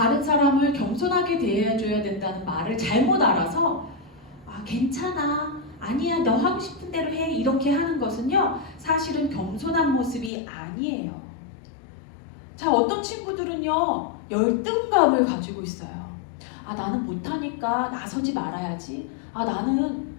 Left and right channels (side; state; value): right; drops out; at 10.3 s